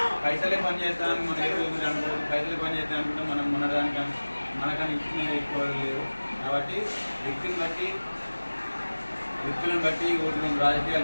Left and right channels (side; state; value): both; inverted; correlation -1.00